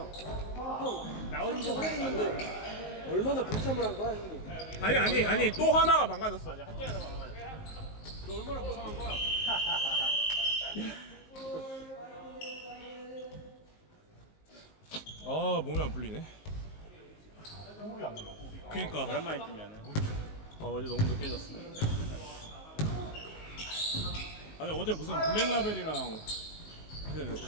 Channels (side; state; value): right; late; 19 ms